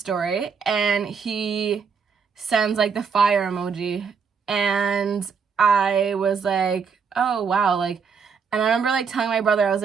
and he sends like the fire emoji, and I was like, oh wow, like, and I remember like telling my brother, I was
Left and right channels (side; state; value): left; quieter; 6.0 dB